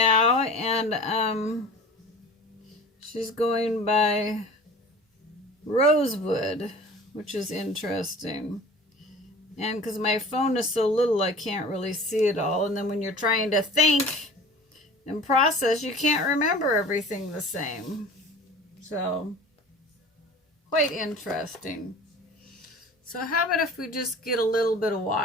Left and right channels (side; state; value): both; normal; correlation 0.42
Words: and she's going by Rosewood, which is interesting. And because my phone is so little, I can't really see it all. And then when you're trying to think and process, you can't remember everything the same. So, quite interesting. So how about if we just get a little bit of